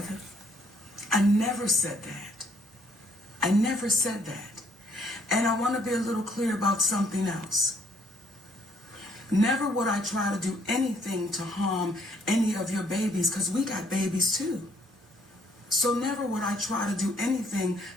I never said that. I never said that. And I want to be a little clear about something else. Never would I try to do anything to harm any of your babies, because we got babies too. So never would I try to do anything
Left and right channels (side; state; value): both; normal; correlation 0.67